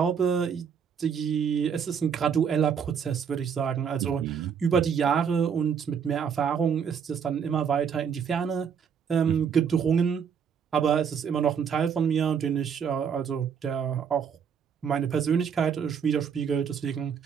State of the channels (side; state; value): left; quieter; 7.2 dB